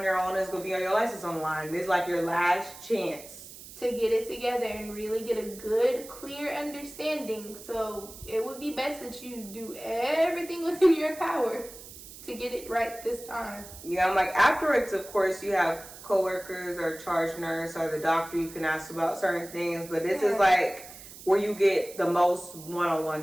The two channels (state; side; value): noise; right; hiss, 16 dB below the sound